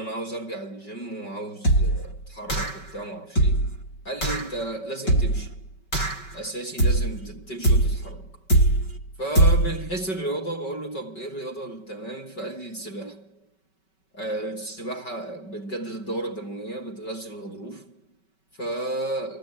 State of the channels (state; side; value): late; right; 5.3 ms